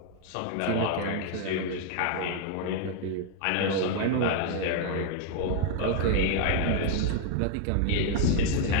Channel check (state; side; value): different; both; correlation 0.00